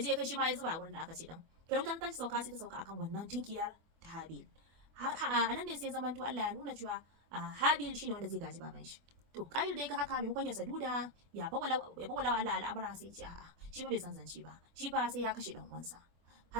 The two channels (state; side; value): late; left; 24 ms